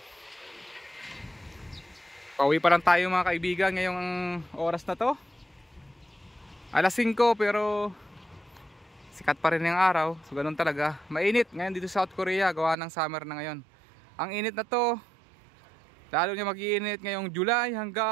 Pauwi pa lang tayo mga kaibigan ngayong oras na to. Alas 5 pero sikat pa rin yung araw. So ganun talaga. Mainit ngayon dito sa South Korea. Gawa ng summer na ngayon. Ang init na to. Lalo niya mag-iinit ngayong July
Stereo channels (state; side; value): drops out; left; at 12.8 s